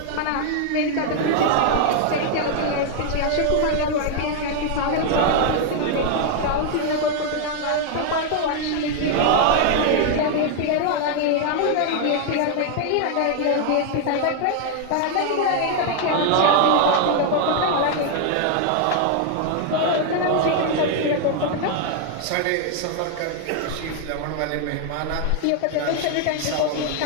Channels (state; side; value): different; both; correlation 0.00